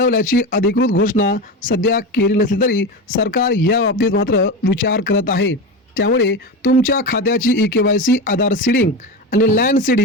अधिकृत घोषणा सध्या केली नसली तरी सरकार या बाबतीत मात्र विचार करत आहे। त्यामुळे तुमच्या खात्याची EKYC, आधार सीडिंग आणि लँड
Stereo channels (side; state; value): both; normal; correlation 0.21